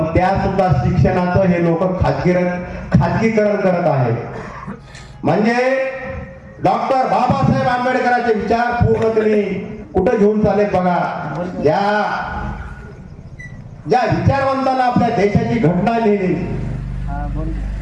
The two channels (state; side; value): identical; both; correlation 1.00